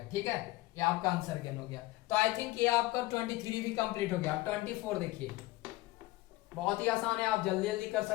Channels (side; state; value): right; quieter; 18.9 dB